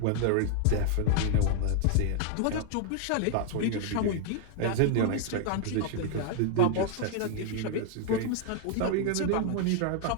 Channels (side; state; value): both; different; correlation 0.00